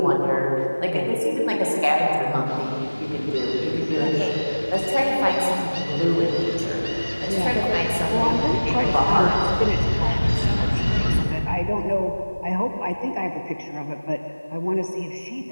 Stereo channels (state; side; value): inverted; both; correlation -1.00